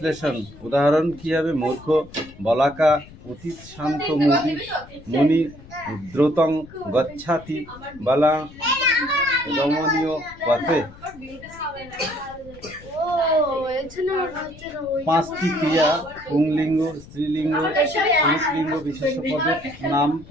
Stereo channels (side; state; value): left; noise; rumble, 20 dB below the sound